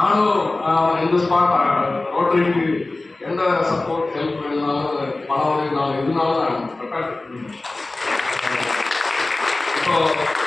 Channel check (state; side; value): quieter; right; 3.1 dB